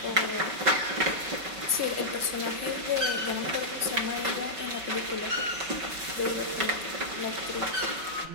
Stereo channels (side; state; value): left; late; 5.3 ms